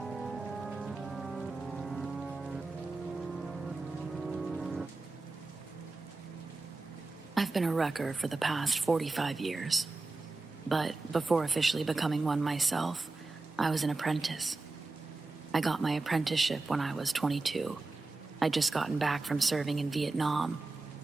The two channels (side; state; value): left; quieter; 3.4 dB